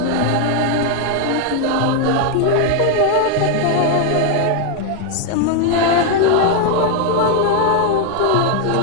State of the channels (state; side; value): different; both; correlation 0.01